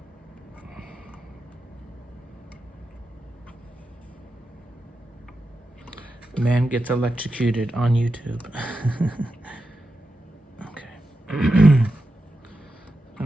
Man gets electrocuted on YouTube. Okay.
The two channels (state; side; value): normal; both; correlation 0.89